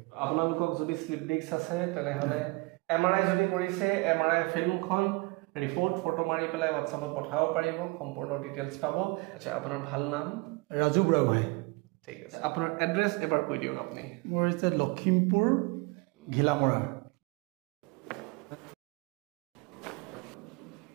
আপোনালোকক যদি স্লিপ ডিস্ক আছে তেনেহ'লে MRI যদি কৰিছে MRI ফিল্মখন ৰিপৰ্ট ফটো মাৰি পেলাই হোৱাটছআপত পঠাব পাৰিব সম্পূৰ্ণ ডিটেইলছ পাব আচ্ছা আপোনাৰ ভাল নাম ৰাজু বুঢ়াগোহাঁই ঠিক আছে আপোনাৰ এড্ৰেছ এবাৰ কৈ দিয়ক আপুনি মোৰ হৈছে লখিমপুৰ ঘিলামৰা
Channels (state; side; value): quieter; left; 26.2 dB